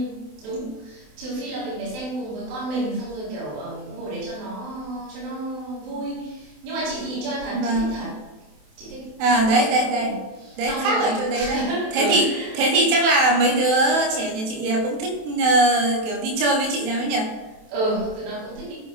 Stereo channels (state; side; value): late; left; 27 ms